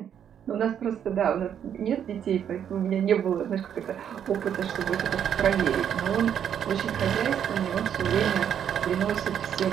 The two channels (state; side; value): quieter; left; 9.0 dB